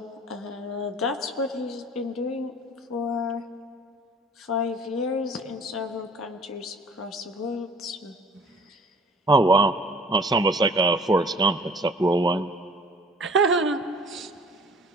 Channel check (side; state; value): both; normal; correlation 0.50